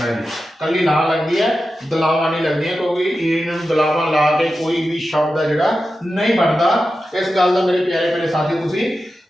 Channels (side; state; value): both; normal; correlation 0.92